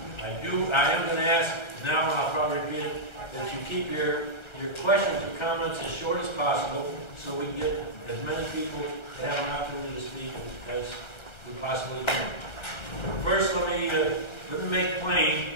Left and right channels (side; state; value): right; late; 1.3 ms